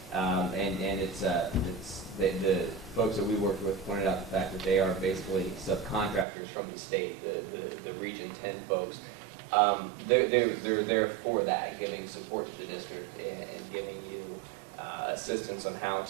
and it's the folks that we worked with pointed out the fact that they are basically subcontractors from the state, the Region 10 folks. They're there for that, giving support to the district and giving you assistance on how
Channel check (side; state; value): left; drops out; at 6.2 s